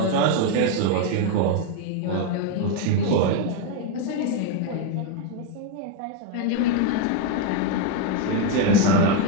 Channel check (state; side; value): different; both; correlation 0.02